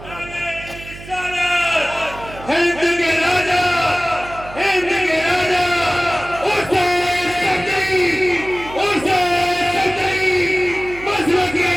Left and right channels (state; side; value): noise; right; hum, 15 dB below the sound